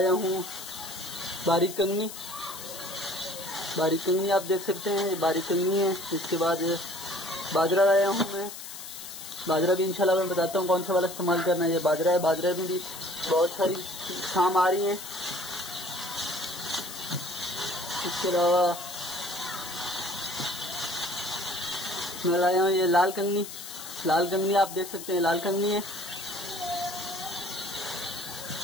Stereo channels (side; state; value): left; noise; hiss, 11 dB below the sound